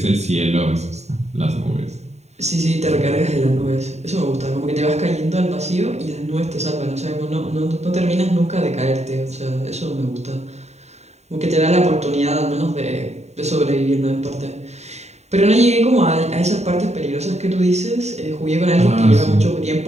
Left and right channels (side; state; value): left; late; 0.32 ms